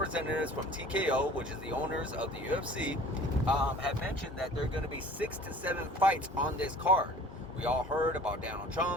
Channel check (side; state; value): both; normal; correlation 0.47